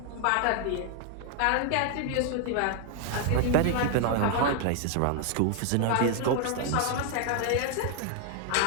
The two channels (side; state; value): both; different; correlation 0.00